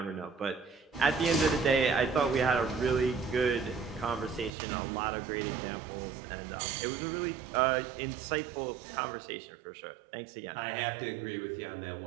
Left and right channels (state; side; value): drops out; left; at 4.5 s